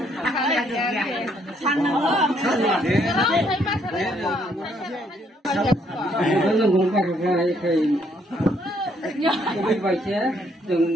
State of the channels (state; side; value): normal; both; correlation 0.69